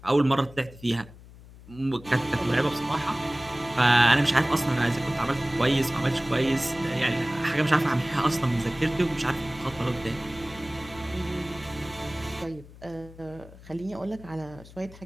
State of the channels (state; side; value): noise; left; hum, 20 dB below the sound